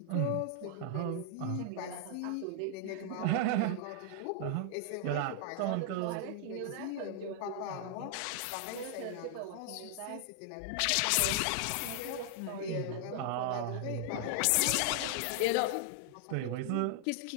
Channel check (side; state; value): both; different; correlation 0.00